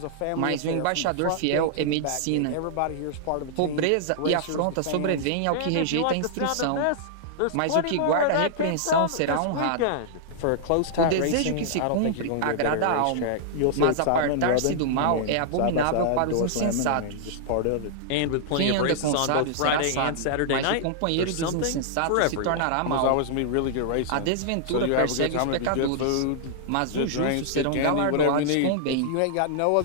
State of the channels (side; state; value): both; different; correlation -0.01